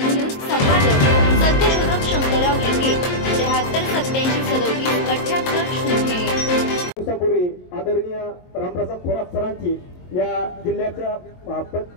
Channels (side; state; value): right; late; 22 ms